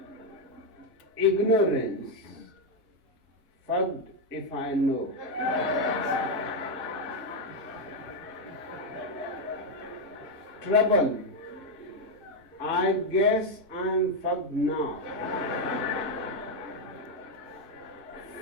Ignorance, fucked if I know. Trouble, I guess I'm fucked now.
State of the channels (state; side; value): normal; both; correlation 0.04